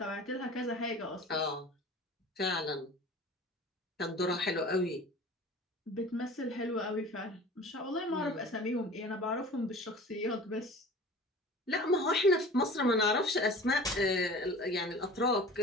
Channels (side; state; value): both; normal; correlation 0.41